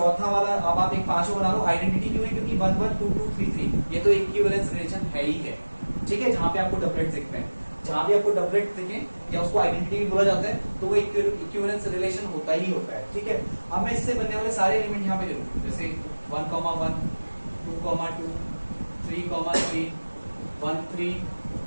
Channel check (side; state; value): both; inverted; correlation -1.00